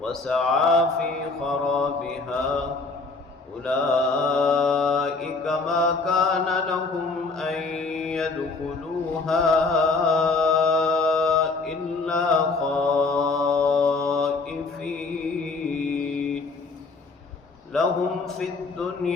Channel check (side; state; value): right; quieter; 3.9 dB